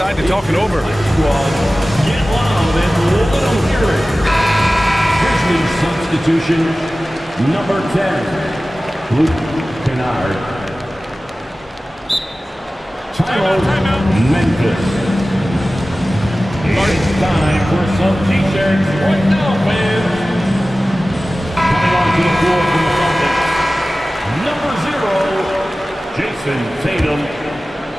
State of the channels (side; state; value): both; normal; correlation 0.96